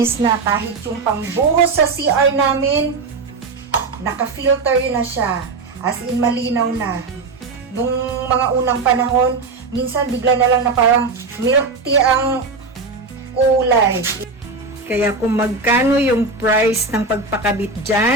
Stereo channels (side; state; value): left; quieter; 4.0 dB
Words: na kahit yung pambuhos sa CR namin, naka-filter na siya. As in, malinaw na. Nung mga unang panahon, minsan bigla na lang na parang milk tea ang kulay. Kaya kung magkano yung price ng pagpakabit